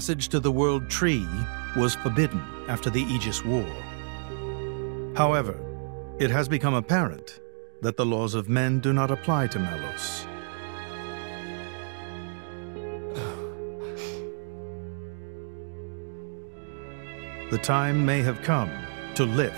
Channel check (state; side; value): silent; left; 59 dB below the other